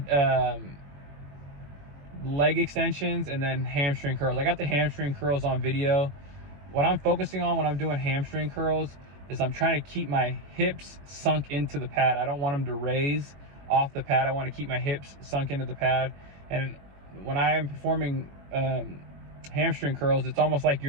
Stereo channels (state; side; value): late; left; 21 ms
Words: leg extensions and then hamstring curls. I got the hamstring curls on video. What I'm focusing on when I'm doing hamstring curls is I'm trying to keep my hips sunk into the pad. I don't want them to raise off the pad. I want to keep my hips sunk into the pad. And when I am performing hamstring curls, it's almost like